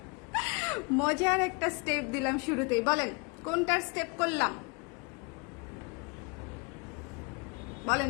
মজার একটা স্টেপ দিলাম শুরুতেই। বলেন কোনটার স্টেপ করলাম? বলেন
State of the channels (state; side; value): quieter; right; 30.8 dB